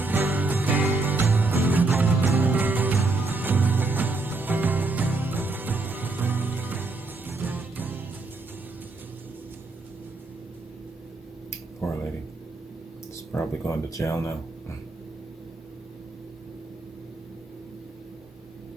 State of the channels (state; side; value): quieter; left; 3.4 dB